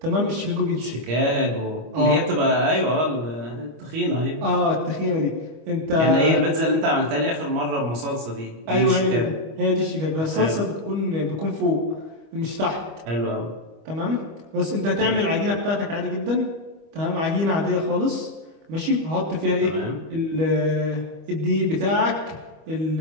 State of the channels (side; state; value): left; late; 25 ms